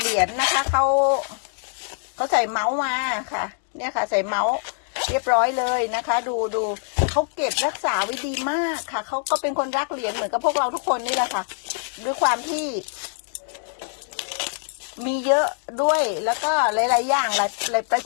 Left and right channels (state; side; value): silent; right; digital silence